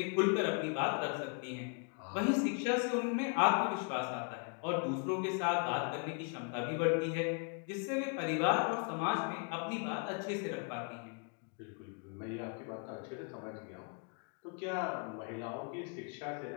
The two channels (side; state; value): right; quieter; 38.5 dB